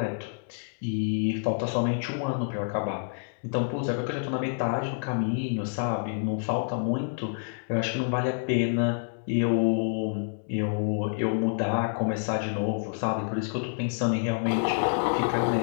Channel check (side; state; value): right; silent; digital silence